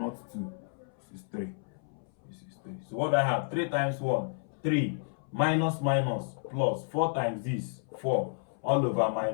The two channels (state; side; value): silent; right; 57 dB below the other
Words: 2. This is 3. This is 3. So what do I have? 3 times 1, 3. Minus minus plus 4 times this, 4. All over